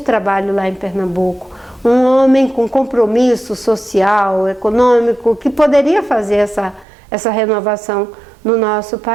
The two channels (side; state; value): left; drops out; at 6.9 s